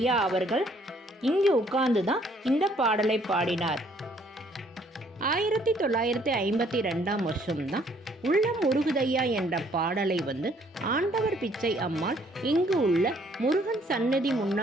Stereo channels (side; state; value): both; normal; correlation 0.63